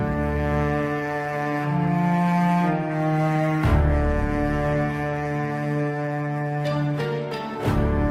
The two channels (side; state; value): both; identical; correlation 1.00